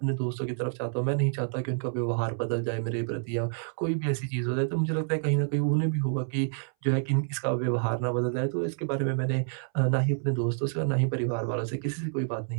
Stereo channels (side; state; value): left; silent; 59 dB below the other